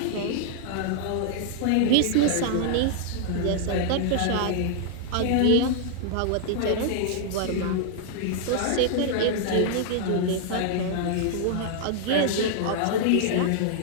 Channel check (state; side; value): different; both; correlation -0.01